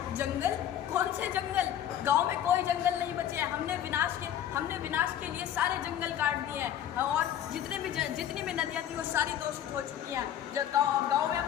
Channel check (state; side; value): quieter; right; 10.6 dB